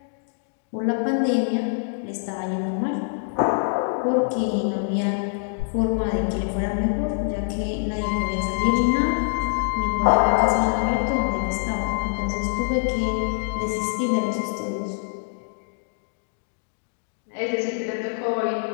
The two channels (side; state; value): right; silent; digital silence